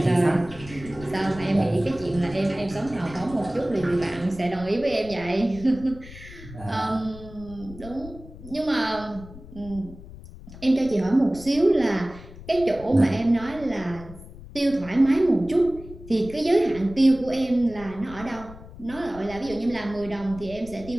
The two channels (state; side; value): noise; left; rumble, 16 dB below the sound